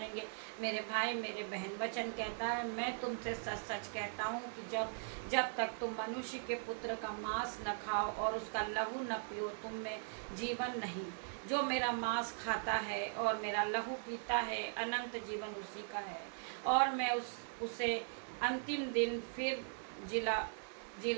मेरे भाई, मेरे बहन, वचन कहता है, मैं तुमसे सच सच कहता हूँ कि जब तक तुम मनुष्य के पुत्र का मांस न खाओ और उसका लहू न पियो, तुम में जीवन नहीं। जो मेरा मांस खाता है और मेरा लहू पीता है, अनंत जीवन उसी का है, और मैं उसे अंतिम दिन फिर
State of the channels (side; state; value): left; silent; digital silence